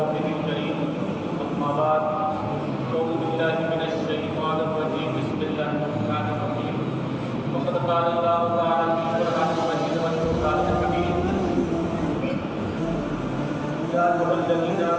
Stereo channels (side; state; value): both; identical; correlation 1.00